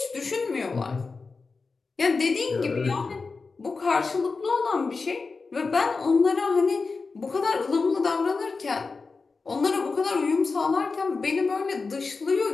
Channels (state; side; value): quieter; right; 4.3 dB